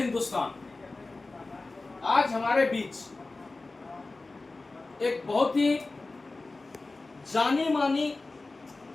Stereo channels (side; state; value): right; quieter; 3.4 dB